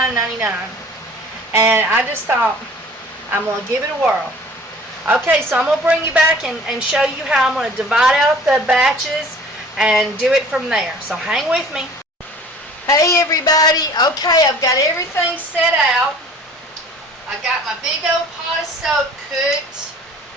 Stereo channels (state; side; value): normal; both; correlation 0.48